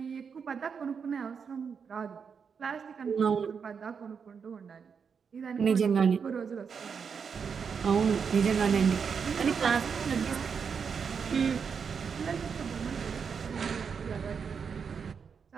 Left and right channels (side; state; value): left; quieter; 6.3 dB